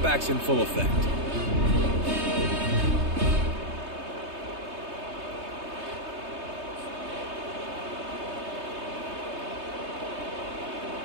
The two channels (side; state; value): left; late; 3.2 ms